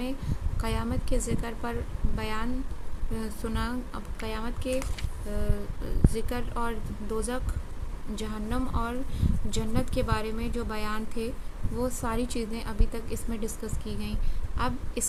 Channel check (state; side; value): identical; both; correlation 1.00